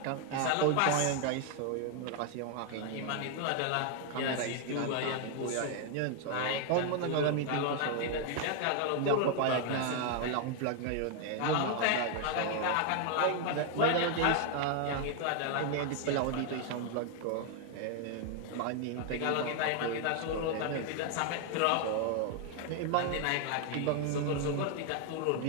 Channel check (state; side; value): different; both; correlation 0.00